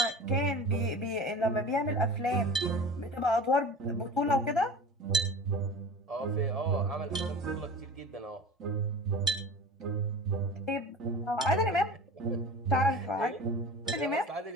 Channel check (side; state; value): both; normal; correlation 0.36